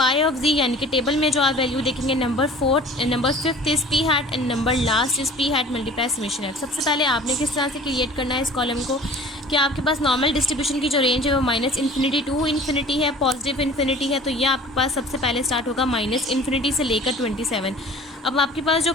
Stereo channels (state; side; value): normal; both; correlation 0.45